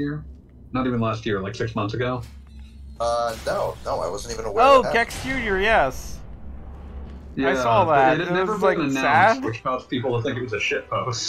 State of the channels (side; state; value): both; identical; correlation 1.00